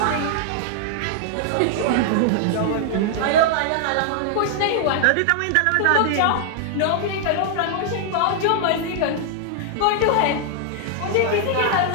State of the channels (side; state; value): both; different; correlation -0.01